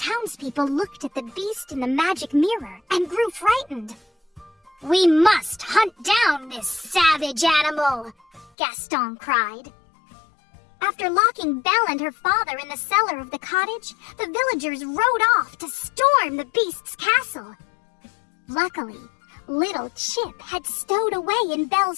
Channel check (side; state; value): right; drops out; at 8.5 s